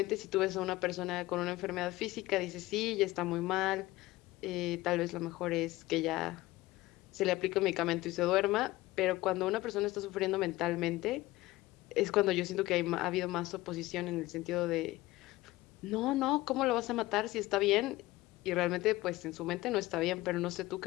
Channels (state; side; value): quieter; right; 18.5 dB